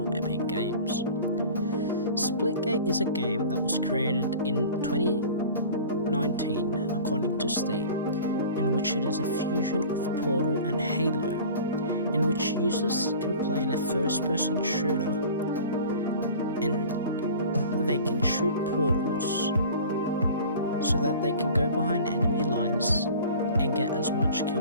Epic Games. Splitgate is a game that was created in 2019 according to Steam, in which it is a fusion of Portal and Halo, in which users can play in a first-person shooter and they can shoot portals so that they can go behind enemy lines and get as much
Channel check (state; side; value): inverted; both; correlation -0.42